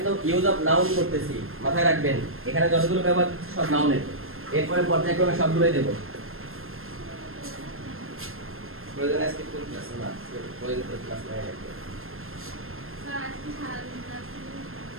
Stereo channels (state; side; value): late; left; 0.61 ms